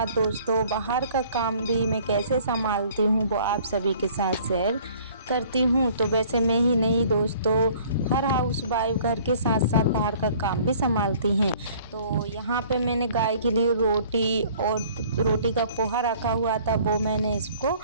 दोस्तों, बाहर का काम भी मैं कैसे संभालती हूँ वो आप सभी के साथ शेयर करती हूँ। तो वैसे मैं ही नहीं दोस्तों, हर हाउस वाइफ घर के साथ साथ बाहर का काम भी संभालती हैं। तो यहाँ पे मैंने गाय के लिए रोटी और रोटी का पोहा रखा हुआ था, वो मैंने इसको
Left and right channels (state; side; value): inverted; both; correlation -0.54